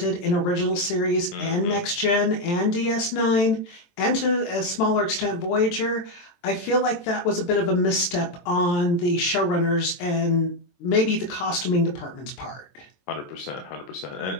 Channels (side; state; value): right; late; 23 ms